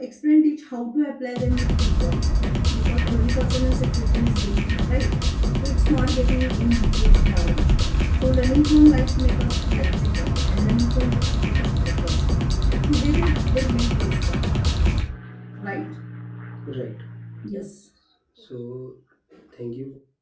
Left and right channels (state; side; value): identical; both; correlation 1.00